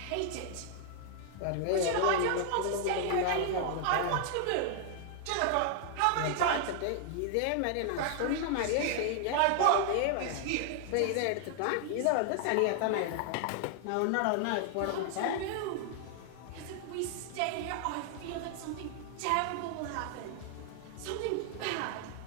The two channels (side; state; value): both; different; correlation 0.00